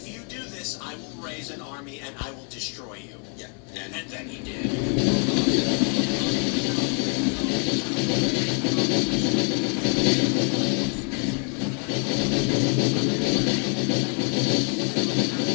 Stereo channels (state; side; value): quieter; right; 39.4 dB